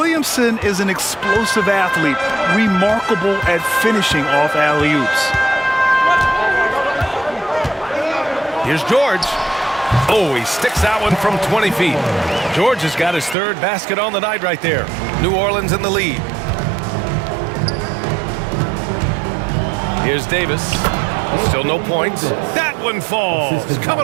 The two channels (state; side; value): drops out; left; at 13.4 s